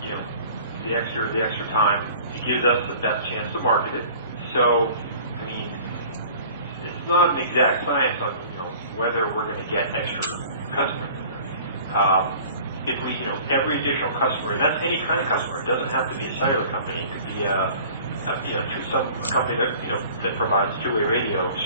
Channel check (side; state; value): both; inverted; correlation -0.47